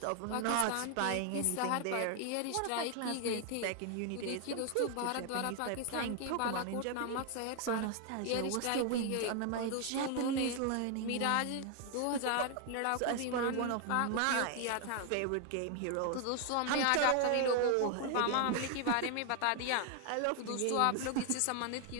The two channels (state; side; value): different; both; correlation 0.00